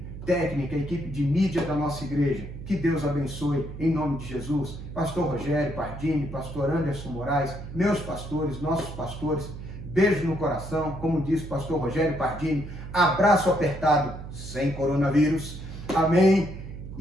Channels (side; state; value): right; noise; hum, 10 dB below the sound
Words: técnica, a equipe de mídia da nossa igreja. Que Deus abençoe em nome de Jesus. Pastor Rogério Pardini, pastor Anderson Moraes, meus pastores, nossos pastores. Beijo no coração, como disse o pastor Rogério Pardini. Abraço apertado, sem coronavírus. Amém.